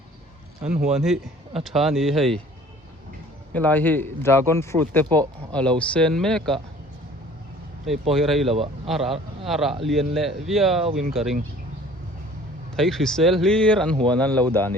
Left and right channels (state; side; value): normal; both; correlation 0.50